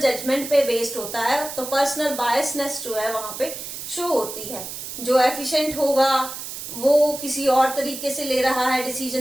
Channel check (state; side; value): noise; right; hiss, 9 dB below the sound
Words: पे बेस्ड होता है। तो पर्सनल बायसनेस जो है वहां पे शो होती है। जो एफिशिएंट होगा वो किसी और तरीके से ले रहा है